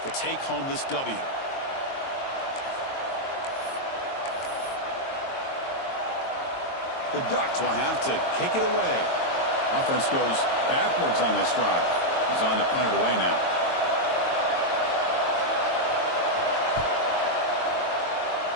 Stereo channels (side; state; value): right; late; 22 ms